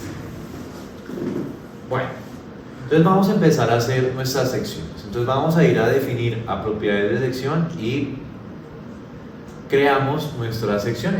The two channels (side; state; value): both; identical; correlation 1.00